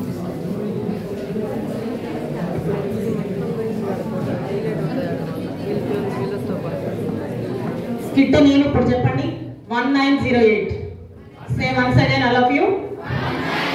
స్కిట్ నేను ఇప్పుడు చెప్పండి. 1908. Say once again, all of you.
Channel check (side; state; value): both; identical; correlation 1.00